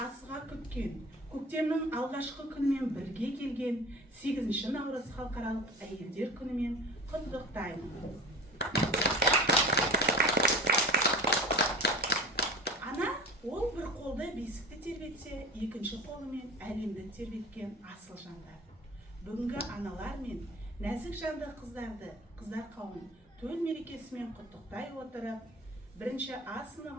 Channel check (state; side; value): normal; both; correlation 0.36